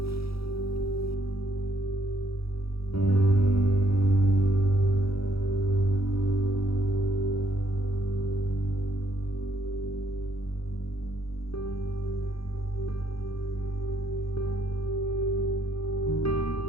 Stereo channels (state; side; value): late; right; 0.77 ms